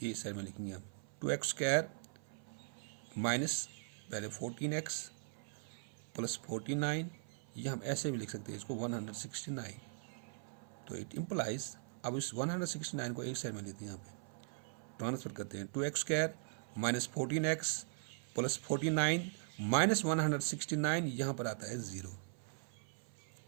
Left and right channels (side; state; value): left; silent; 51 dB below the other